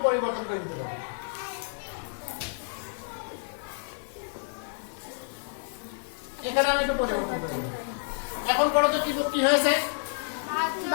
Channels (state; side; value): silent; right; digital silence